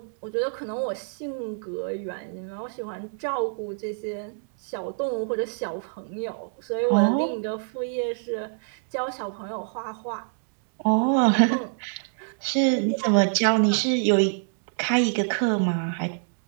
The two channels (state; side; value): silent; left; digital silence